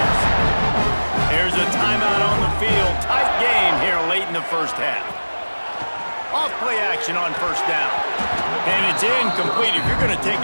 There's a timeout on the field. Tight game here late in the first half. Off-play action on first down. And it's incomplete. If you're going to take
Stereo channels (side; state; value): both; inverted; correlation -1.00